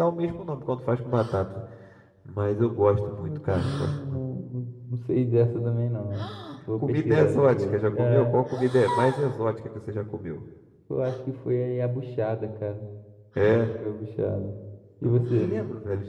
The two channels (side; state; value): both; identical; correlation 1.00